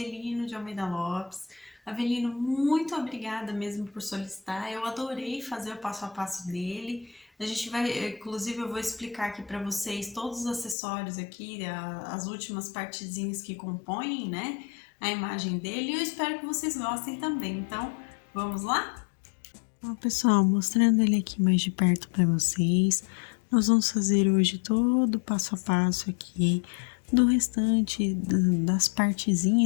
de Almeida Lopes. Avelino, muito obrigada mesmo por solicitar, eu adorei fazer o passo a passo dele. A gente vai, inclusive eu vou explicar aqui para vocês todos os acessórios aqui, as últimas partezinhas que compõem, né, a imagem dele, e eu espero que vocês gostem também. Então, vamos lá? Bom, pessoal, mostrando ele aqui mais de perto para vocês, nós vamos fazer hoje todo o passo a passo aqui do restante das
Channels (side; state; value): right; drops out; at 10.8 s